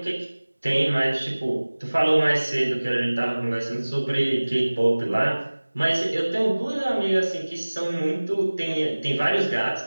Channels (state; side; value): inverted; both; correlation -1.00